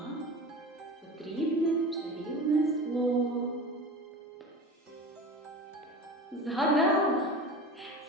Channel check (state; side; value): normal; both; correlation 0.33